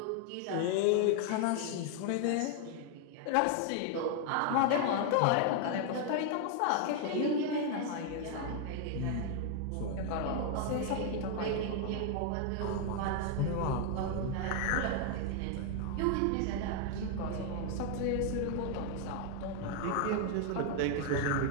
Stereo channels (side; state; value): both; different; correlation 0.00